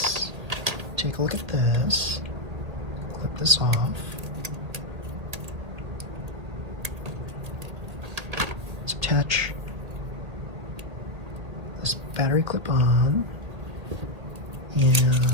take a look at this. Clip this off. Let's attach this battery clip on,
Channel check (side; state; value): left; late; 1.8 ms